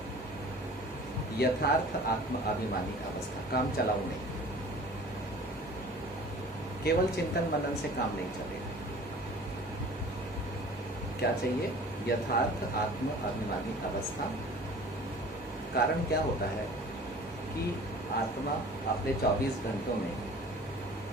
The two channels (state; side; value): normal; both; correlation 0.45